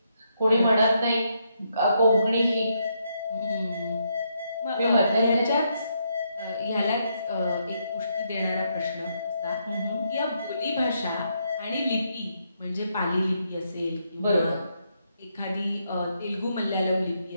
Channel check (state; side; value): inverted; both; correlation -0.77